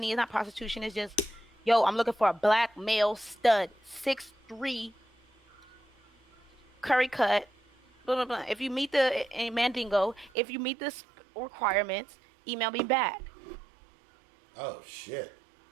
It's not prostitution. It's just, yo, I'm looking for a black male stud, 6'3", curry cut, blah blah blah. If you meet the Mandingo, if you meet the requirements, email me back. Oh shit.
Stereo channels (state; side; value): drops out; left; at 10.3 s